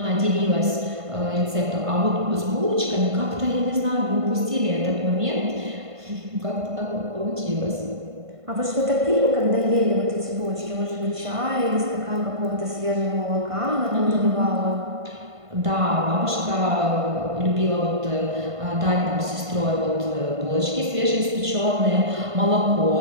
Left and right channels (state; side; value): late; left; 1.5 ms